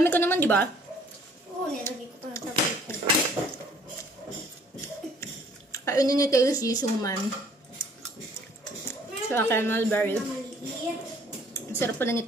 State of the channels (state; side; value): normal; both; correlation 0.59